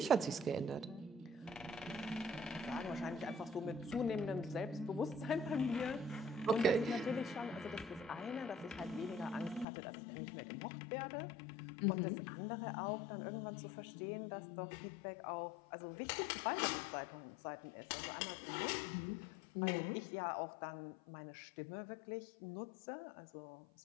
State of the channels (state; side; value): drops out; right; at 9.7 s